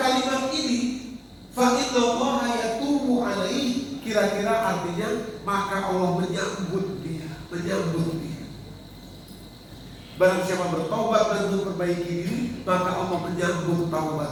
ini, fa innallaha yatubu alaihi, kira-kira artinya maka Allah menyambut dia. Barang siapa bertaubat dan memperbaiki diri, maka Allah menyambut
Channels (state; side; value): identical; both; correlation 1.00